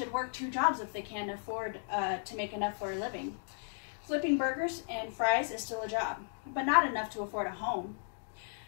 work 2 jobs if they can afford to make enough for a living. Flipping burgers and fries is still a job, but not enough to afford a home,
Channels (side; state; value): right; silent; digital silence